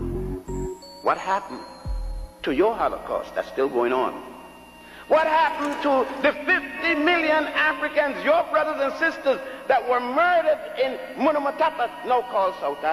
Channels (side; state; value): both; identical; correlation 1.00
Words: What happened to your Holocaust that's still going on? What happened to the 50 million Africans, your brothers and sisters, that were murdered in Munamatapa, now called South